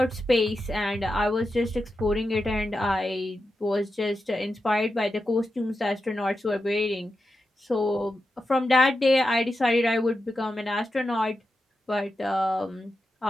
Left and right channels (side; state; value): both; normal; correlation 0.89